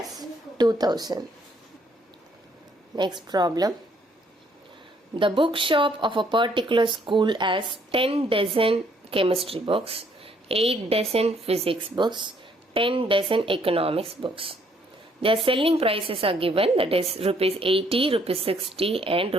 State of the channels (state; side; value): normal; both; correlation 0.66